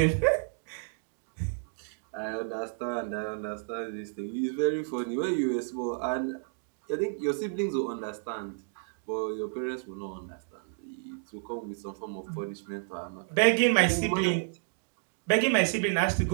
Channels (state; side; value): silent; left; digital silence